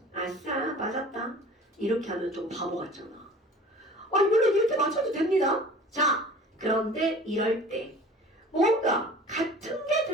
아싸, 맞았다. 이렇게 하면 좀 바보 같잖아. 물론 이렇게 맞춰도 됩니다. 자, 그런데 이럴 때 뭔가 같은 게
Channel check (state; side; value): normal; both; correlation 0.44